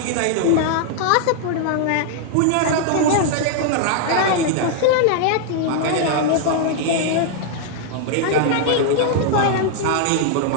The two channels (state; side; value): different; both; correlation 0.00